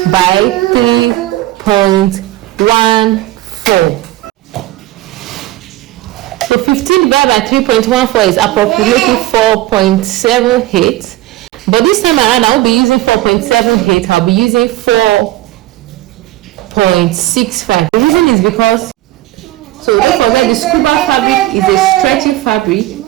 by 3.14. So 15 divided by 3.14 is approximately 4.78. But this time around, I won't be using 4.78. I'll be using 4.65. The reason is because, so don't forget, the scuba fabric is a stretchy fabric,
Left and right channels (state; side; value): quieter; left; 16.4 dB